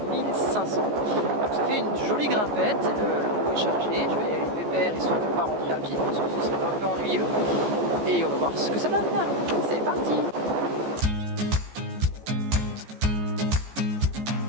1500. Donc ça fait une jolie grimpette, la roue est chargée, je vais y aller pépère histoire de ne pas rentrer à pied parce que ce serait un peu ennuyeux. Et on va voir ce que ça donne. C'est parti!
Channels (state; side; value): late; left; 14 ms